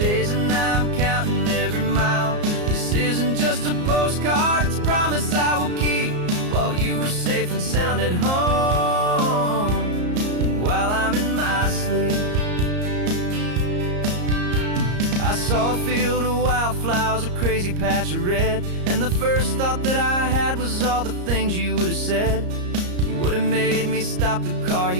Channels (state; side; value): late; left; 34 ms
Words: and I'm counting every mile. This isn't just a postcard, it's a promise I will keep, while you are safe and sound at home, and while I'm in my sleep. I saw a field of wildflowers, a crazy patch of red, and the first thought that I had was all the things you would have said. You would have made me stop the car,